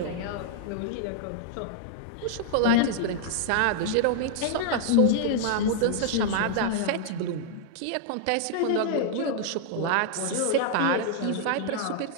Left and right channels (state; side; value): different; both; correlation -0.01